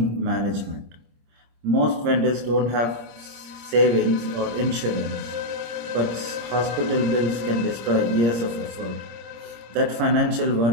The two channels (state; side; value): late; left; 26 ms